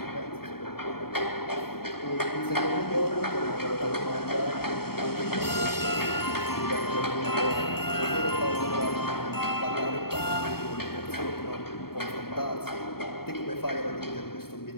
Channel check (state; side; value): late; right; 0.95 ms